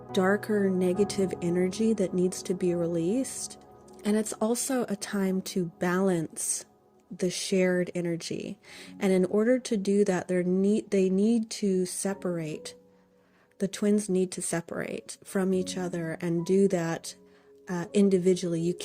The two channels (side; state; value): both; identical; correlation 1.00